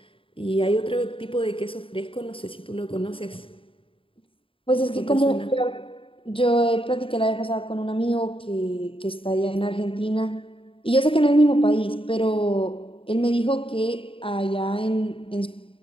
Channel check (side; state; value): right; late; 0.26 ms